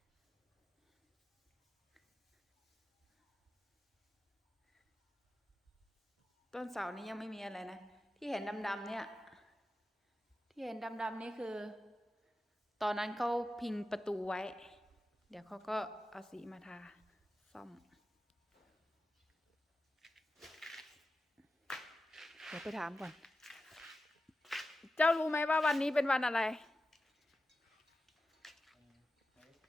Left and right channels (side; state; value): both; normal; correlation 0.93